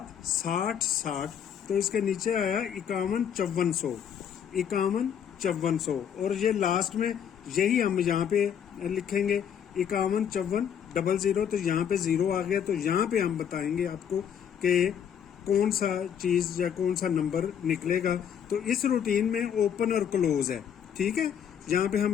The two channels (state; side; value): quieter; right; 8.6 dB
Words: 60, 60, तो इसके नीचे आया 51, 5400, 51, 5400, और ये लास्ट में यही हम यहाँ पे लिखेंगे 51, 54, 00। तो यहाँ पे 0 आ गया, तो यहाँ पे हम बताएंगे आपको कि कौन सा चीज या कौन सा नंबर निकलेगा। तो इस रूटीन में ओपन और क्लोज है, ठीक है। यहाँ पे हम